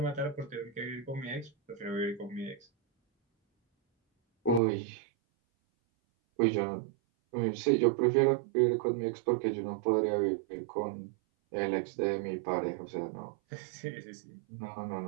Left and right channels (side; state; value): left; drops out; at 4.6 s